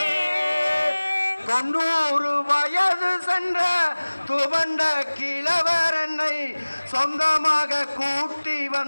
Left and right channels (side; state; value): both; inverted; correlation -1.00